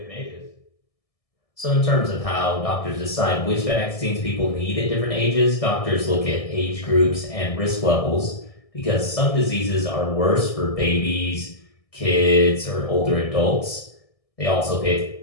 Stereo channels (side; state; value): right; late; 1.6 ms